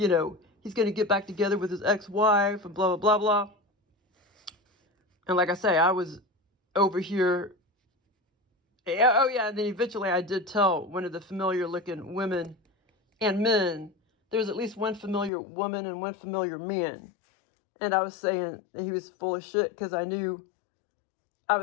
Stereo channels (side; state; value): right; drops out; at 15.3 s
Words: to get back together with his ex-wife and blah, blah, blah, blah. And like I say, I was over here. Oh, yeah. And then eventually I did tell one of the familiar looking women and men, there's at least one familiar woman and one familiar man. And I was saying that he was full of shit, because I knew, I